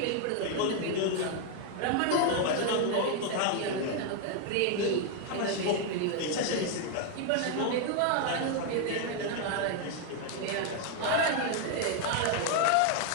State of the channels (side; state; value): both; different; correlation 0.00